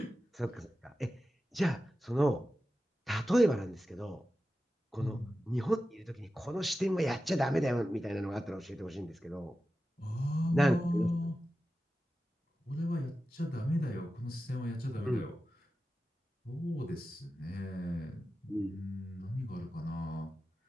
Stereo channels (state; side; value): normal; both; correlation 0.93